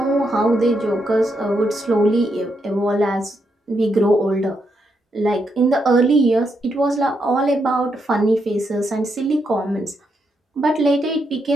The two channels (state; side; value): normal; both; correlation 0.80